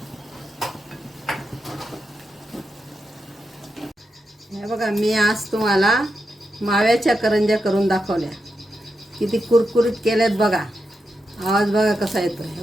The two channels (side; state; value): both; normal; correlation 0.86